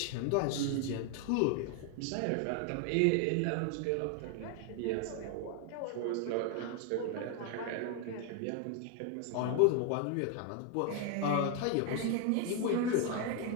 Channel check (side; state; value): both; different; correlation 0.01